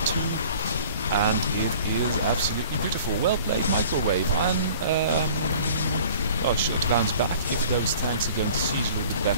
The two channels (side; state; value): both; inverted; correlation -0.48